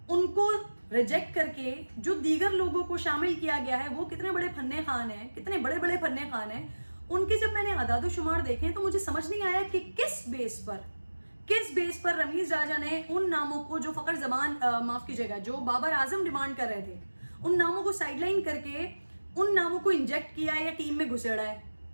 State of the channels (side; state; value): both; inverted; correlation -1.00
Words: उनको रिजेक्ट करके जो दीगर लोगों को शामिल किया गया है, वो कितने बड़े फन्ने खान हैं, कितने बड़े बड़े फन्ने खान हैं। उनके जब मैंने आदाद शुमार देखे तो मुझे समझ नहीं आया कि किस बेस पर रमीज राजा ने उन नामों को, जो फखर जमान, माफ कीजिएगा, जो बाबर आजम डिमांड कर रहे थे, उन नामों को साइडलाइन करके उन नामों को इंजेक्ट किया या टीम में घुसेड़ा है।